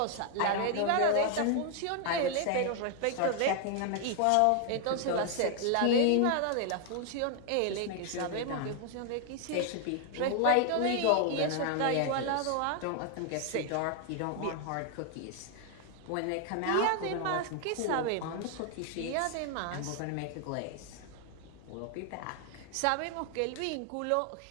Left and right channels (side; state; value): both; different; correlation 0.00